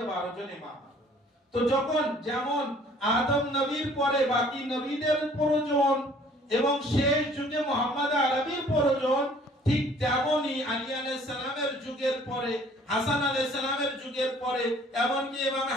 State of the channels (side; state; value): both; normal; correlation 0.56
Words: 12 জন ইমাম। তো যখন যেমন আদম নবীর পরে বাকি নবীদের প্রয়োজন এবং শেষ যুগে মুহাম্মদ আরবির প্রয়োজন, ঠিক তেমনি আলী আলাইহিস সালামের যুগের পরে, হাসান আলাইহিস সালামের যুগের পরে, এমনকি ইমাম